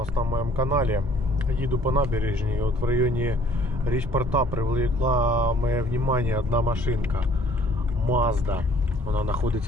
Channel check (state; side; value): normal; both; correlation 0.57